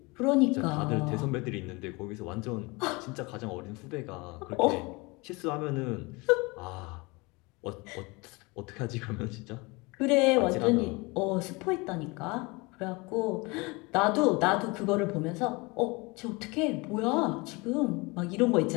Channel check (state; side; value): quieter; right; 25.9 dB